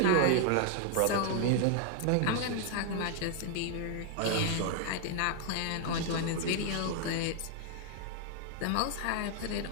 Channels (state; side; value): different; both; correlation 0.00